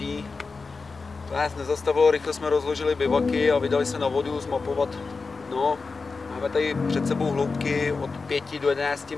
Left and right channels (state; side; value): quieter; right; 4.3 dB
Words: To nás nezastavilo, rychle jsme rozložili bivaky a vydali se na vodu zmapovat dno. Máme tady před sebou hloubky od 5 do 11